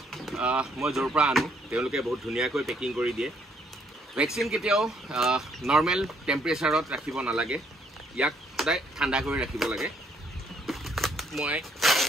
মই য'ৰ পৰা আনো তেওঁলোকে বহুত ধুনীয়াকৈ পেকিং কৰি দিয়ে। ভেকচিন কেতিয়াও নৰ্মেল টেম্পাৰেচাৰত ৰাখিব নালাগে, ইয়াক সদায় ঠাণ্ডা কৰি ৰাখিব লাগে। মই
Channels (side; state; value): both; normal; correlation 0.68